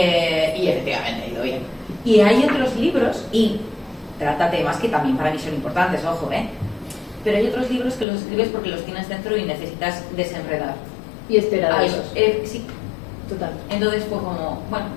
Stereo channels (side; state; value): right; drops out; at 8.1 s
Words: efectivamente ha ido bien. Y hay otros libros, y trata temas que también para mí son importantes, ojo, pero hay otros libros que los escribes porque los tienes dentro y necesitas desenredar. Y esperar a esos. Sí. Total. Entonces fue como, bueno,